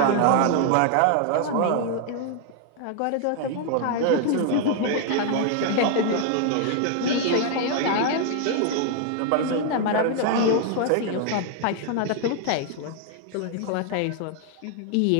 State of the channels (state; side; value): different; both; correlation 0.00